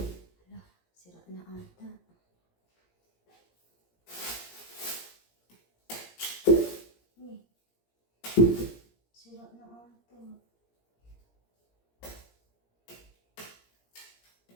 sira na ata. Sira na ata.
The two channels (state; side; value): late; right; 17 ms